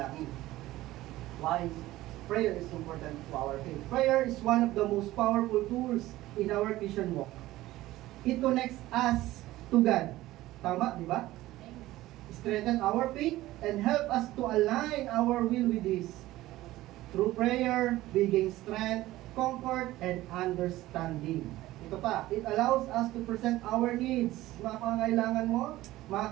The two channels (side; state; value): left; quieter; 16.5 dB